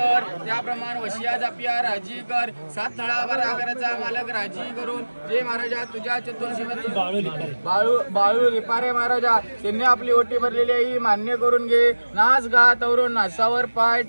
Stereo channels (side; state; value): both; inverted; correlation -1.00